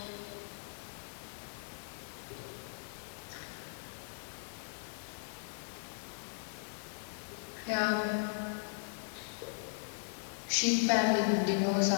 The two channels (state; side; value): silent; right; digital silence